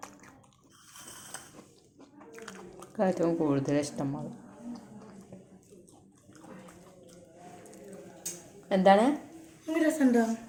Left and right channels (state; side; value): identical; both; correlation 1.00